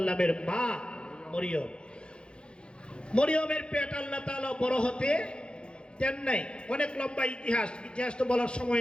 মা মরিয়ম, মরিয়মের পেট আল্লাহ তাআলা বড় হতে দেন নাই। অনেক লম্বা ইতিহাস তো বলার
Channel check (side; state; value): right; late; 0.054 ms